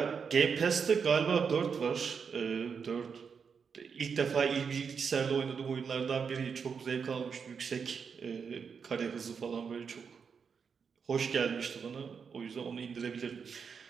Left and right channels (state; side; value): quieter; left; 6.2 dB